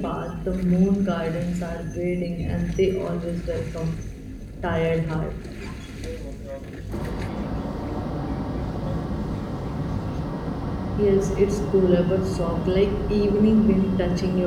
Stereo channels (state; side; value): identical; both; correlation 1.00